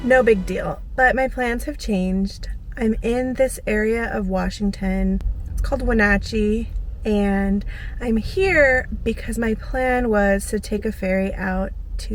No big deal, but my plans have changed. I'm in this area of Washington. It's called Wenatchee, and I'm here because my plan was to take a ferry out to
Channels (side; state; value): both; identical; correlation 1.00